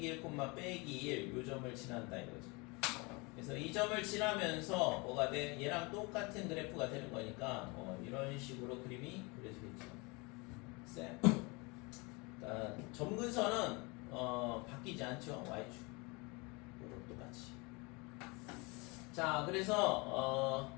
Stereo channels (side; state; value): right; quieter; 27.8 dB